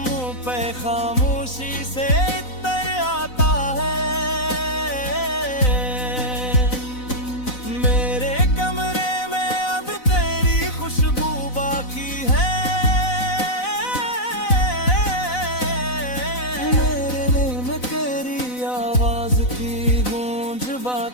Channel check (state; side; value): late; right; 4.0 ms